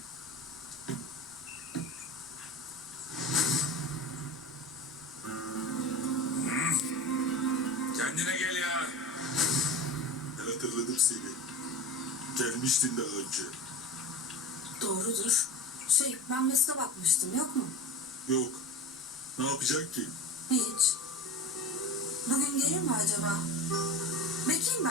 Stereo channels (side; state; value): both; normal; correlation 0.32